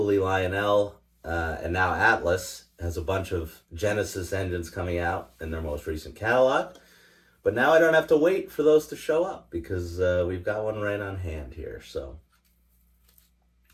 Lionel and now Atlas has a bunch of Genesis engines coming out in their most recent catalog. But now I don't have to wait for those to show up because we've got one right on hand here. So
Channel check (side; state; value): both; identical; correlation 1.00